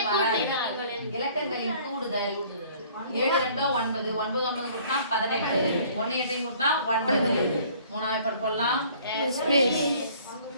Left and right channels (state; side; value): inverted; both; correlation -0.55